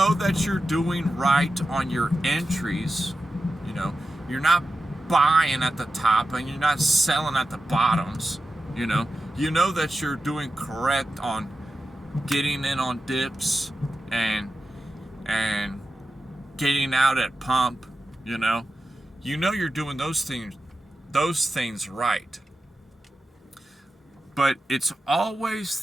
that you're doing right on your entries. You're not buying at the top and you're not selling at the bottoms. You know that you're doing correct on getting in on dips and getting out at pump. You're doing those things right. But it's always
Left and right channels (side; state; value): both; normal; correlation 0.92